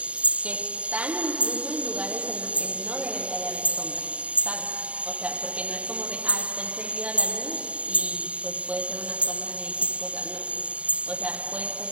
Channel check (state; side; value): late; left; 0.064 ms